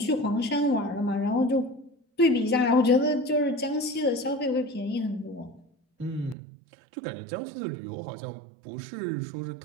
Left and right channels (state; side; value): drops out; left; at 6.4 s